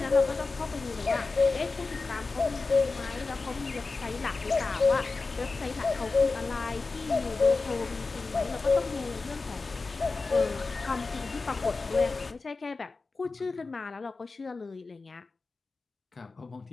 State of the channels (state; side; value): quieter; right; 3.9 dB